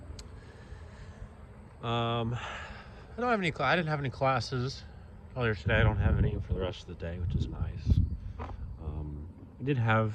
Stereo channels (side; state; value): both; identical; correlation 1.00